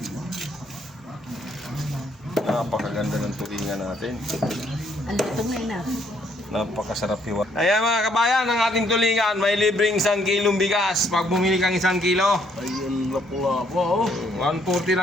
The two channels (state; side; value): normal; both; correlation 0.69